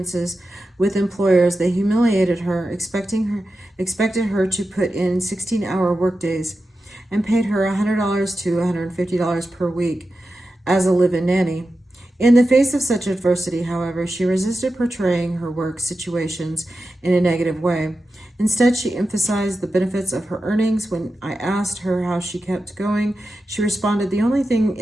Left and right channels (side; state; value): both; normal; correlation 0.91